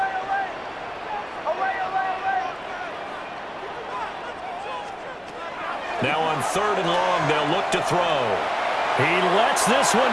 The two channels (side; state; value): both; identical; correlation 1.00